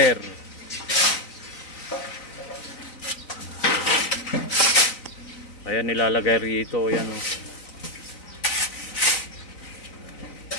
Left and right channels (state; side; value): late; right; 3.9 ms